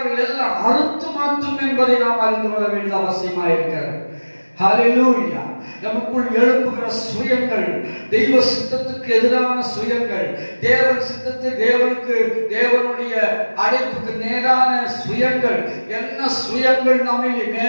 எல்லாம் அறுத்து மாற்றும் என்பதை நாம் அறிந்து கொள்ள வேண்டிய அவசியமாக இருக்கிறது. ஹல்லேலூயா. நமக்குள் எழுப்புகிற சுயங்கள், தெய்வ சித்தத்துக்கு எதிரான சுயங்கள், தேவன் சித்தத்தை தேவனுடைய அழைப்புக்கு நேரான சுயங்கள், என்ன சுயங்கள் நம்மில்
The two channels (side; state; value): both; inverted; correlation -1.00